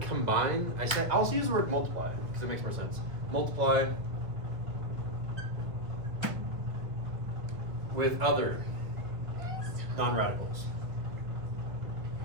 combine? I'll also use the word multiply because it makes more sense. Multiply with other non-radicals.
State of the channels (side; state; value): left; late; 1.5 ms